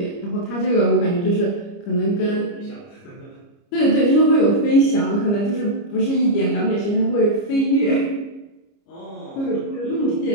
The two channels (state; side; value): late; right; 29 ms